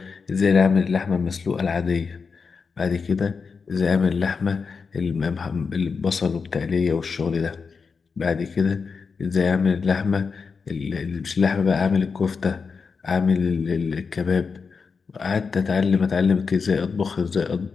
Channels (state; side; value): quieter; right; 5.2 dB